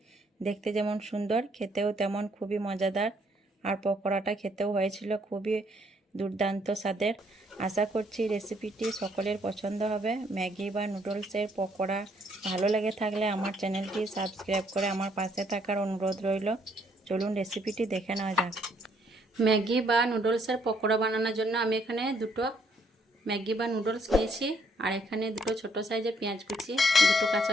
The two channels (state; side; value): normal; both; correlation 0.69